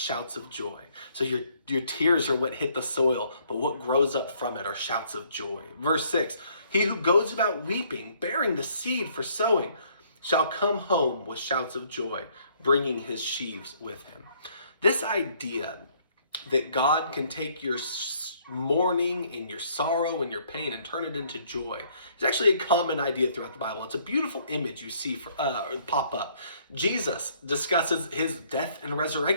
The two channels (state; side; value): inverted; both; correlation -0.64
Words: of joy. So your tears are what hit the soil, but what grows up from it are shouts of joy. Verse 6, he who goes about weeping, bearing the seed for sowing, shall come home with shouts of joy, bringing his sheaves with him. This idea that God can take your mourning and your sorrow and your pain and turn it into joy is actually a common idea throughout the Bible. It's a beautiful image you see pop up. Jesus discusses his death and